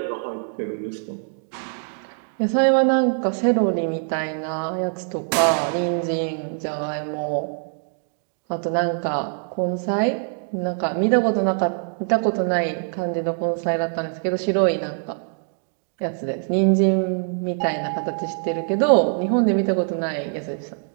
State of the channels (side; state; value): left; silent; 58 dB below the other